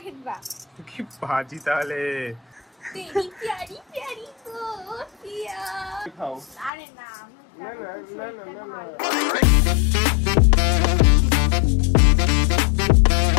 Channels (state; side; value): drops out; right; at 6.7 s